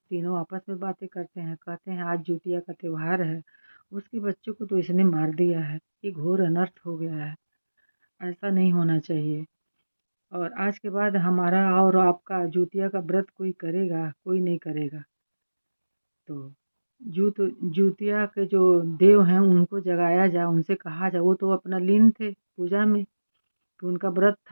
तीनों आपस में बातें करते हैं, कहते हैं आज जिउतिया का त्योहार है, उसके बच्चों को तो इसने मार दिया है, ये घोर अनर्थ हो गया है, ऐसा नहीं होना चाहिए। और आज के बाद हमारा और आपका जिउतिया का व्रत कोई करेगा, कोई नहीं करेगा। तो जिउतिया के जो देव हैं उनको जगाया जाए, उनसे कहा जाए, वो तो अपना लीन थे पूजा में, तो उनका व्रत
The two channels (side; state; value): both; inverted; correlation -1.00